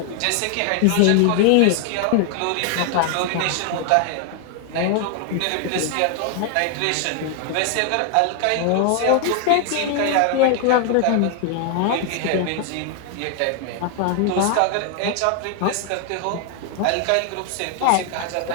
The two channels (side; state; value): both; different; correlation 0.00